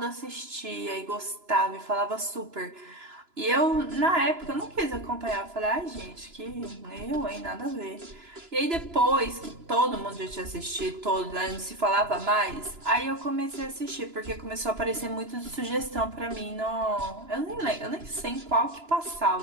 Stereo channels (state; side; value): late; left; 2.9 ms